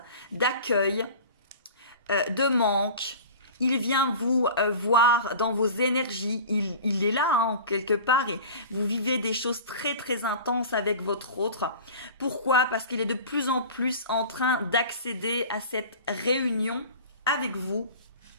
d'accueil, de manque. Il vient vous voir dans vos énergies. Il est là, quelque part. Et vous vivez des choses très, très intenses avec votre autre. Pourquoi? Parce qu'il est de plus en plus en train d'accéder à cette réunion avec vous.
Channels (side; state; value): both; inverted; correlation -0.37